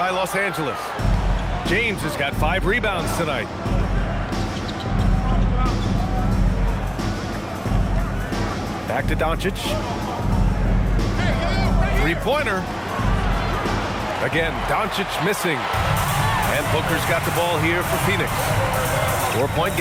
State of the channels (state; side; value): identical; both; correlation 1.00